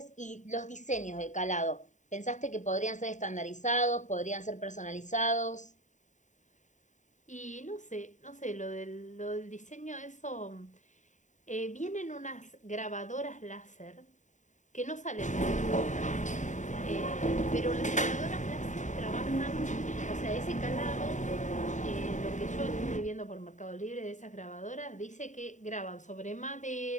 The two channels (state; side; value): late; right; 0.36 ms